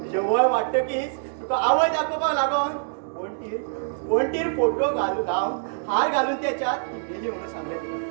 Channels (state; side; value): silent; left; digital silence